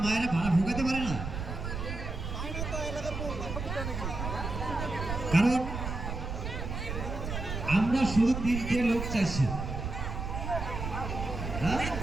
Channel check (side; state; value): right; noise; rumble, 5 dB below the sound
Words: মায়েরা ভাড়া ভোগাতে পারে না? কারণ আমরা শুধু 3টে লোক চাইছি।